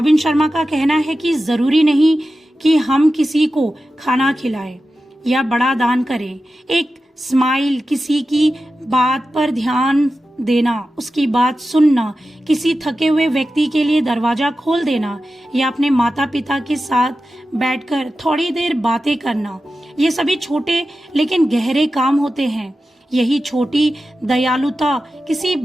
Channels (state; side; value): normal; both; correlation 0.93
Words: शर्मा का कहना है कि जरूरी नहीं कि हम किसी को खाना खिलाएं या बड़ा दान करें। एक स्माइल, किसी की बात पर ध्यान देना, उसकी बात सुनना, किसी थके हुए व्यक्ति के लिए दरवाजा खोल देना या अपने माता पिता के साथ बैठकर थोड़ी देर बातें करना, ये सभी छोटे लेकिन गहरे काम होते हैं। यही छोटी दयालुता किसी